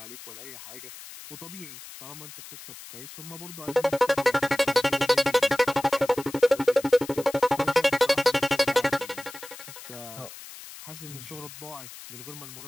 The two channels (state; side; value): noise; left; hiss, 15 dB below the sound